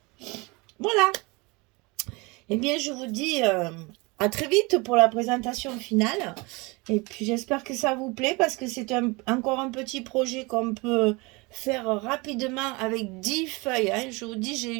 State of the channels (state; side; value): quieter; left; 26.2 dB